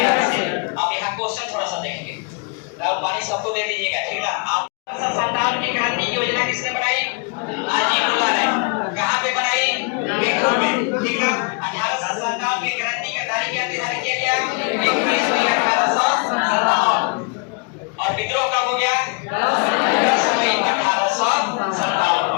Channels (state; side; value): quieter; right; 33.5 dB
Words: से। अब यहाँ क्वेश्चन थोड़ा सा देखेंगे, पानी सबको दे दीजिएगा, ठीक ना। 1857 की क्रांति की योजना किसने बनाई? अजीमुल्ला ने। कहाँ पे बनाई? पीठूर में, ठीक ना। 1857 की क्रांति का तारीख क्या निर्धारित किया गया? 21 मई 1857। और विद्रोह कब हो गया? 10 मई 1857